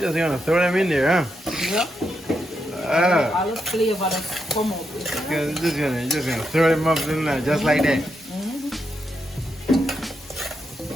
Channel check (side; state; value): both; normal; correlation 0.83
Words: gonna throw them in there, huh? Yeah. All the flavor that come out. Just gonna throw them up in there just like that.